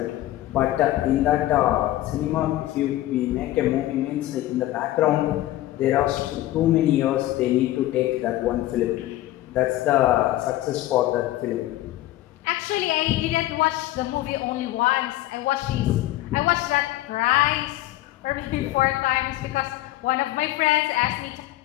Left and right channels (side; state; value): right; quieter; 15.5 dB